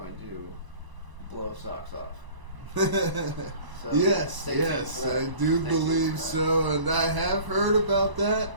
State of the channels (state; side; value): late; left; 1.0 ms